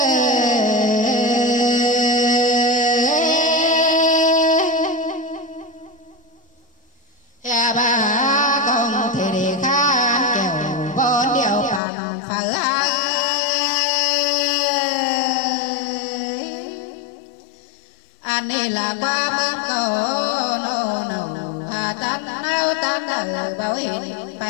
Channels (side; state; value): right; drops out; at 11.8 s